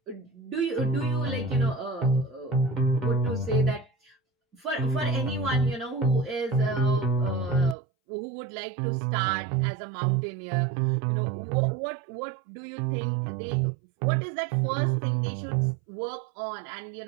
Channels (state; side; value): drops out; left; at 7.8 s